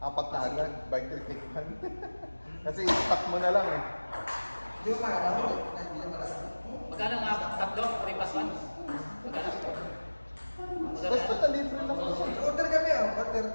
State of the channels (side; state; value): both; inverted; correlation -1.00